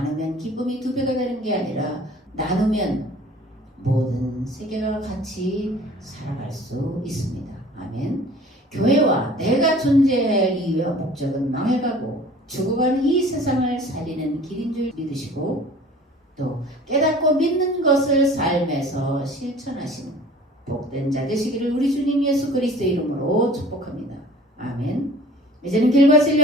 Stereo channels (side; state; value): both; normal; correlation 0.47